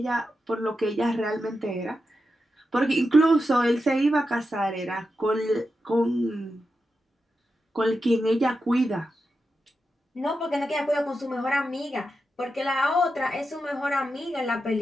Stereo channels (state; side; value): normal; both; correlation 0.89